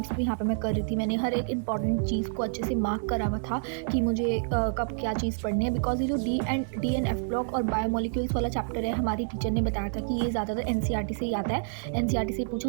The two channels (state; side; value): silent; left; 59 dB below the other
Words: भी यहाँ पे मैं कर रही थी। मैंने हर एक इंपॉर्टेंट चीज़ को अच्छे से मार्क करा हुआ था कि मुझे कब क्या चीज़ पढ़नी है, बिकॉज ये जो DNF ब्लॉक और बायोमोलिक्यूल्स वाला चैप्टर है हमारी टीचर ने बताया था कि ये ज़्यादातर NCERT से ही आता है, NCERT से